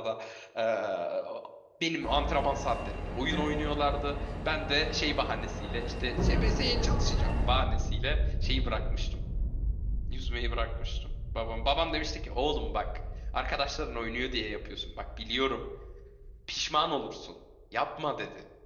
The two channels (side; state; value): both; identical; correlation 1.00